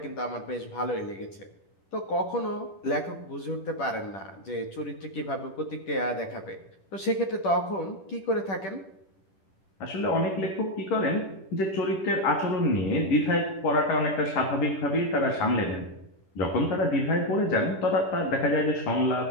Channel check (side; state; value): right; late; 10 ms